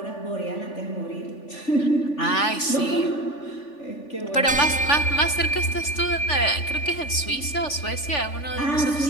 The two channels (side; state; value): right; late; 3.4 ms